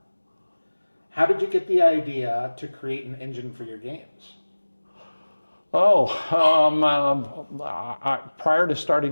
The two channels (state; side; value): inverted; both; correlation -1.00